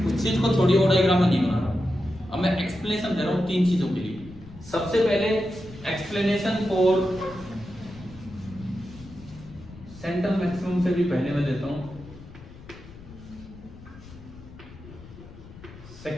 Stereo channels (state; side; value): noise; left; rumble, 18 dB below the sound